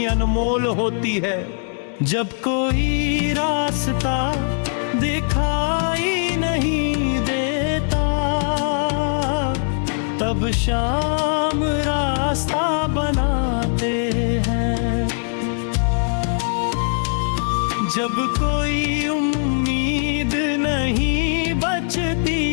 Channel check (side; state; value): right; silent; 61 dB below the other